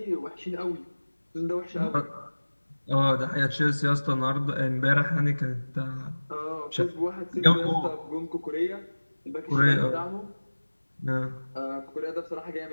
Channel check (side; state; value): both; inverted; correlation -1.00